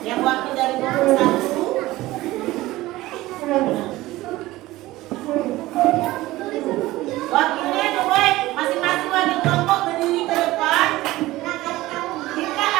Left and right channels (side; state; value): left; quieter; 17.7 dB